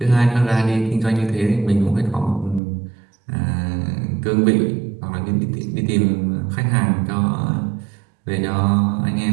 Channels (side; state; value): left; drops out; at 2.6 s